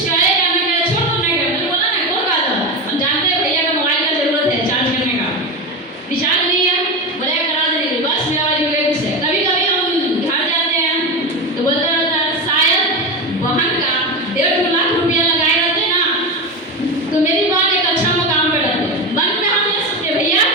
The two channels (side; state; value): both; normal; correlation 0.19